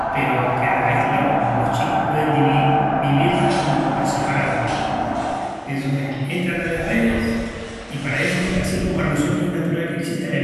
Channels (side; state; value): both; identical; correlation 1.00